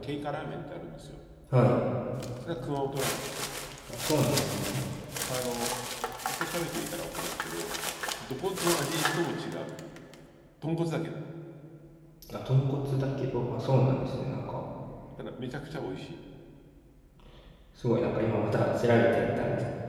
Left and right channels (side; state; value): both; identical; correlation 1.00